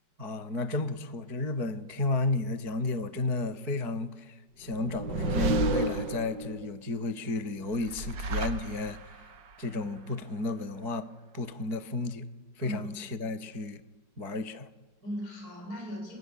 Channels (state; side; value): late; left; 4.7 ms